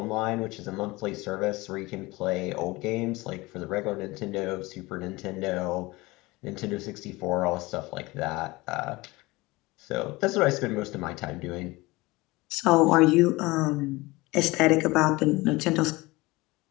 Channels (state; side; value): quieter; right; 21.9 dB